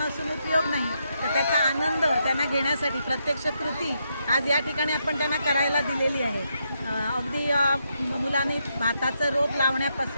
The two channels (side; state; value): both; inverted; correlation -0.80